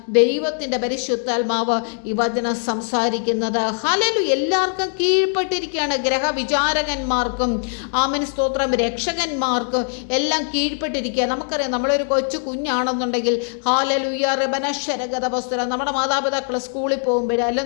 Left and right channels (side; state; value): right; silent; 58 dB below the other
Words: ദൈവത്തിൻ്റെ പരിശുദ്ധാത്മാവ് ഈ വചനം സംസാരിക്കുന്നത്. ഹല്ലേലൂയ. എല്ലാവർക്കും കീഴ്പ്പെട്ടിരിക്കുകയാണ്. ഗ്രഹവിചാരകന്മാർക്കും ആമേൻ സ്തോത്രം രക്ഷകന്മാർക്കും എല്ലാം കീഴ്പ്പെട്ടിരിക്കുക. നമുക്കറിയാം, നമ്മളൊരു കൊച്ചു കുഞ്ഞാണെന്നുണ്ടെങ്കിൽ ഹല്ലേലൂയ റബനശ്വരഗതവസ്തുര നമ്മുടെ മാതാപിതാക്കൾ സ്കൂളിൽ പോകുമ്പോഴേ